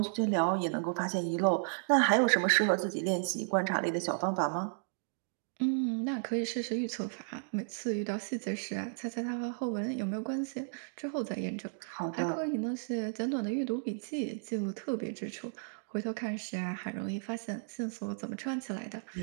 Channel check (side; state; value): left; silent; digital silence